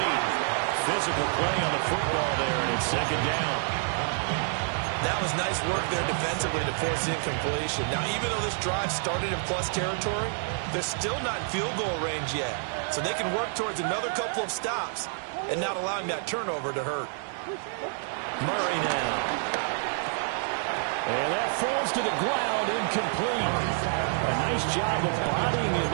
Physical play on the football there, and it's second down. That was nice work there defensively to force incompletion. Now, even though this drive started in plus territory, they're still not in field goal range yet. So they can work towards another couple of stops and not allowing that turnover to hurt. Murray now. And that falls to the ground, incomplete. A nice job of bodying it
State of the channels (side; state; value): left; silent; 59 dB below the other